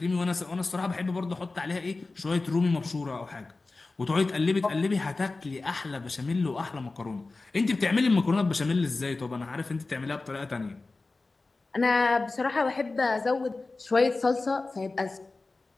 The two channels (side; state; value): right; quieter; 3.5 dB